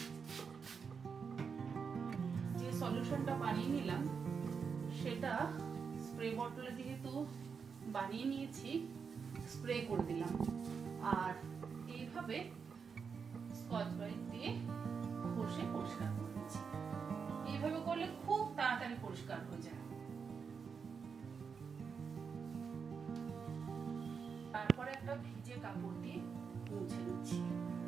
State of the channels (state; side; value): quieter; left; 5.9 dB